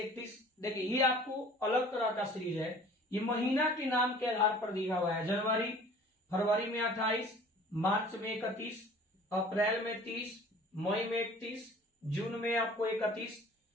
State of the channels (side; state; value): both; normal; correlation 0.48